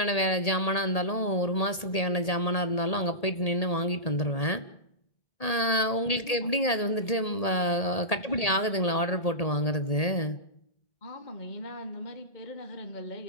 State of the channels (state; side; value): late; right; 1.8 ms